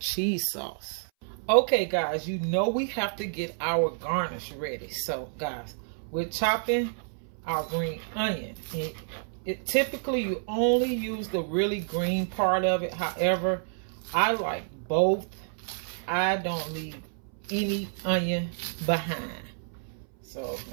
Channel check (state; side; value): silent; left; 58 dB below the other